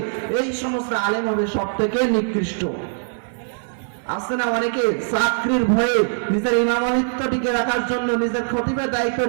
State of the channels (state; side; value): silent; left; 56 dB below the other